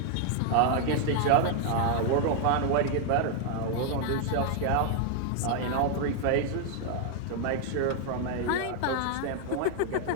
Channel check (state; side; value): different; both; correlation 0.00